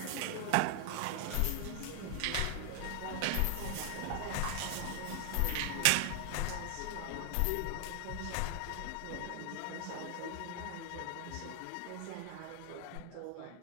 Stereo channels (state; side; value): different; both; correlation 0.00